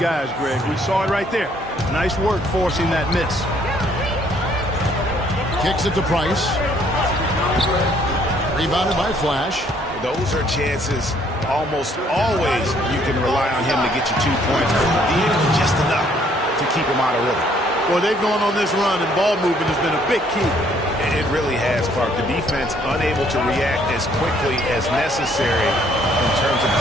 Greg. We saw it right there. Nice work forcing that miss. Kicks it to Price. Rebounded by Flash. Those are chances almost always you can rely on him to get you 2 points. But he did just enough to keep him out of rhythm. Well, they've gone on this run, and ball movement has been a big key. It really has, Clark. The defense unable to react as quickly as necessary in terms of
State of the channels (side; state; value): both; normal; correlation 0.64